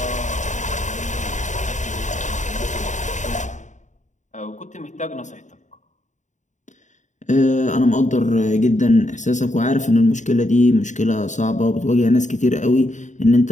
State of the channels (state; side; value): late; right; 0.35 ms